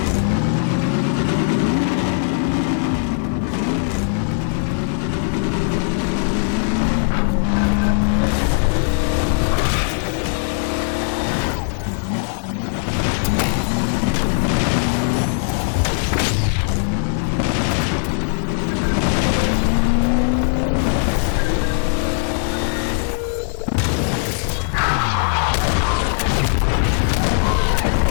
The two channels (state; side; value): silent; right; digital silence